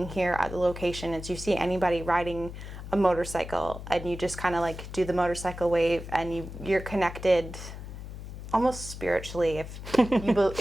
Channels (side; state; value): left; noise; hum, 10 dB below the sound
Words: here at the location. It's you see anybody riding a motorcycle, and you just kind of like do the motorcycle wave, and you're connected almost spiritually if